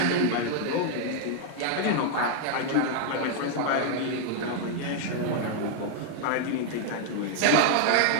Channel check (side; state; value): both; different; correlation 0.00